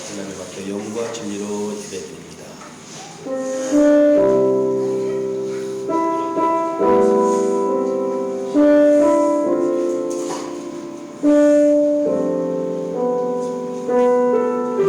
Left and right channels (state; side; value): identical; both; correlation 1.00